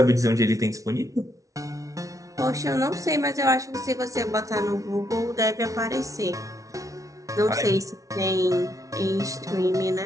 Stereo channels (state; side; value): late; left; 0.16 ms